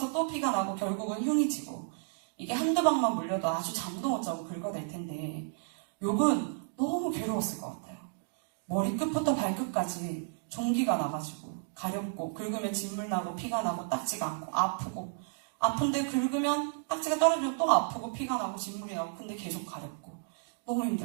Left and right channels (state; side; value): silent; left; digital silence